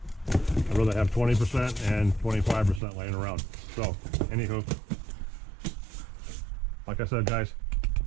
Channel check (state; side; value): drops out; left; at 2.8 s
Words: rather have 20% and 25% laying around. So, anywho, like I said, guys,